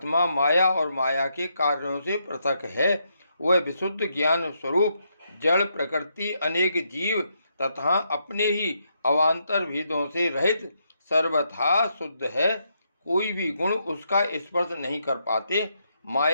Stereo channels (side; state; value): both; inverted; correlation -0.79